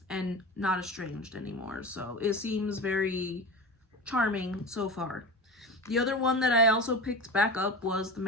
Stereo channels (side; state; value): both; normal; correlation 0.28